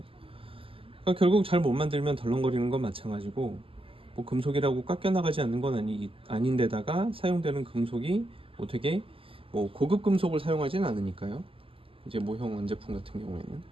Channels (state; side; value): late; left; 0.26 ms